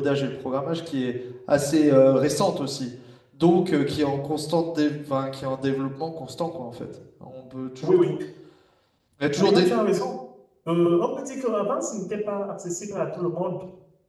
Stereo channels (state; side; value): identical; both; correlation 1.00